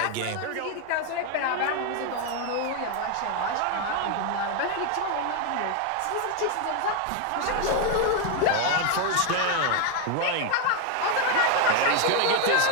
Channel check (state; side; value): different; both; correlation 0.01